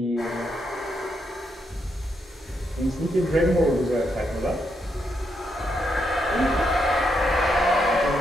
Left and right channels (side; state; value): both; normal; correlation 0.80